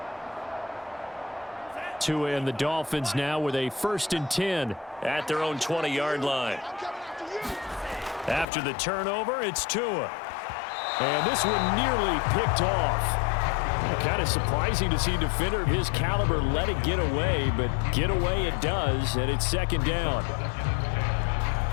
Tua and the Dolphins now with a 1st and 10 at their own 20-yard line. After the turnover, it's Tua. And this one nearly picked off. Kind of surprising to see a defender of his caliber let it get away, but get away it does, and it's 2nd down.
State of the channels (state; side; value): drops out; right; at 8.5 s